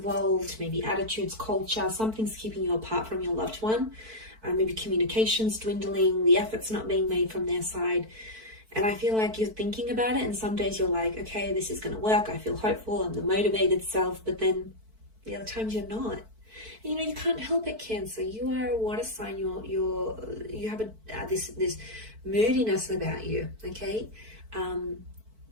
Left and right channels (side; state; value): left; late; 4.5 ms